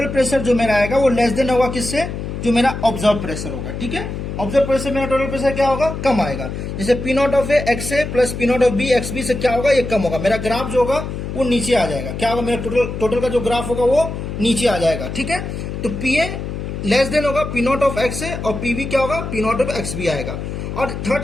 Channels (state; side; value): noise; left; hum, 6 dB below the sound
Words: प्रेशर जो मेरा आएगा वो लेस देन होगा किससे, जो मेरा ऑब्जर्व प्रेशर होगा। ठीक है, ऑब्जर्व प्रेशर मेरा टोटल प्रेशर क्या होगा, कम आएगा। जैसे P not of A X A plus P not of B X B से क्या होगा, ये कम होगा। मेरा ग्राफ जो होगा वो नीचे आ जाएगा। क्या होगा, मेरा टोटल का जो ग्राफ होगा वो नीचे आ जाएगा। ठीक है, तो पी ए लेस देन होगा पी नॉट ऑफ एक्स है, और पी बी क्या होगा, P not of X B आएगा। और